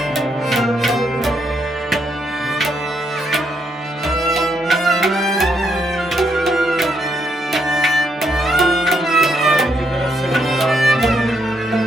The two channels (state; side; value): normal; both; correlation 0.76